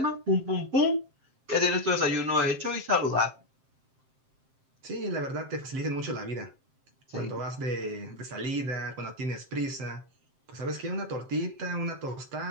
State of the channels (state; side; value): late; left; 7.6 ms